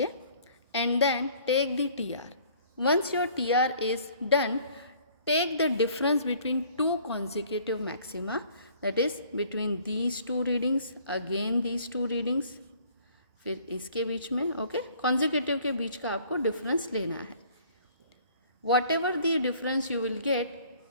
and then take the TR. Once your TR is done, take the difference between two consecutive maxima, that is between these two readings, again these two readings, फिर इसके बीच में, okay, consecutive के बीच का आपको difference लेना है. Whatever the difference you will get,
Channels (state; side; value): inverted; both; correlation -0.56